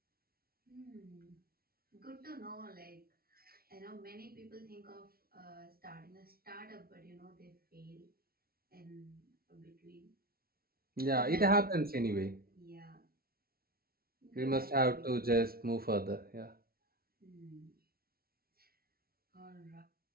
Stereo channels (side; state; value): left; late; 0.44 ms